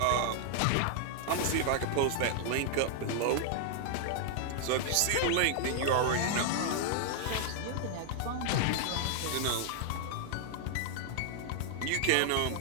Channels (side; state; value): both; different; correlation 0.00